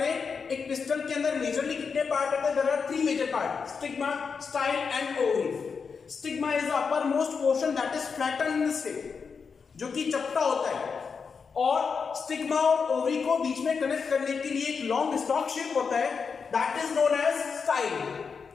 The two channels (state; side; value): quieter; right; 5.6 dB